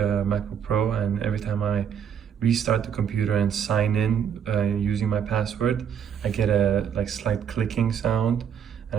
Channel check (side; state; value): left; quieter; 8.1 dB